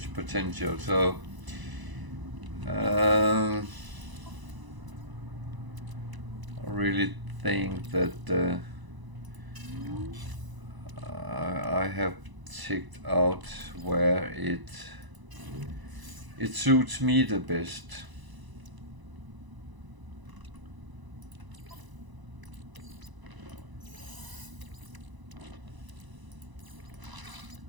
potential, so I really think that I have checked out where it suits me the best.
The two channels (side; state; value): left; late; 1.0 ms